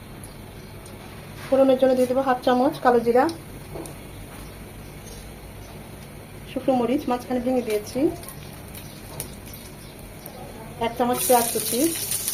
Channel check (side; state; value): both; identical; correlation 1.00